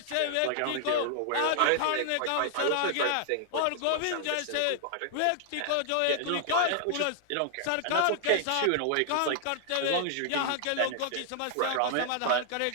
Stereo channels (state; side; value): different; both; correlation -0.01